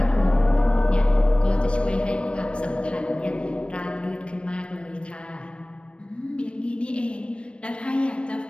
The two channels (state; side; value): late; right; 0.059 ms